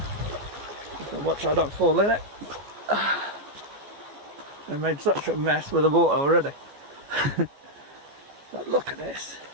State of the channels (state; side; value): late; left; 14 ms